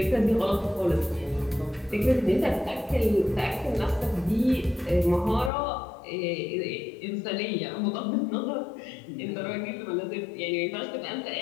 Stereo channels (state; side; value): drops out; right; at 5.5 s